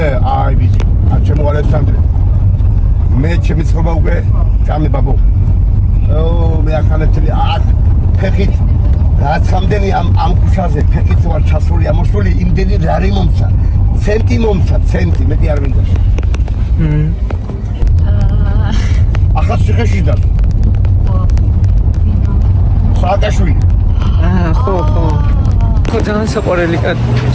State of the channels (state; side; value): identical; both; correlation 1.00